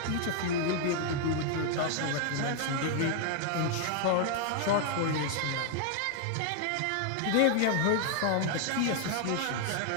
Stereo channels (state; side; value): different; both; correlation 0.00